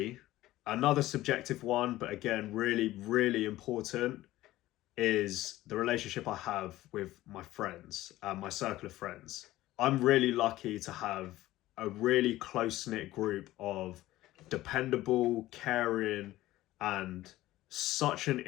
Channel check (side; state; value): right; quieter; 16.1 dB